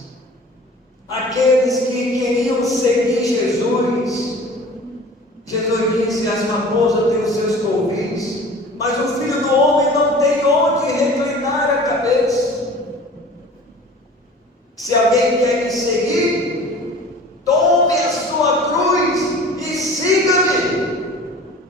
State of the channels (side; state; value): both; normal; correlation 0.43